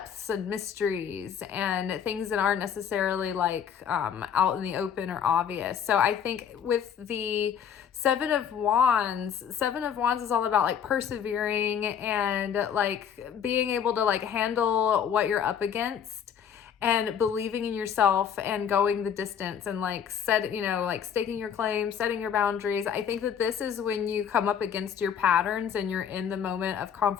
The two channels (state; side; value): quieter; right; 8.2 dB